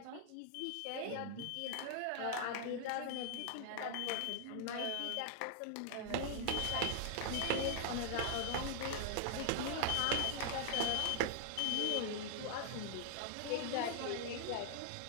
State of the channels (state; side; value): different; both; correlation -0.01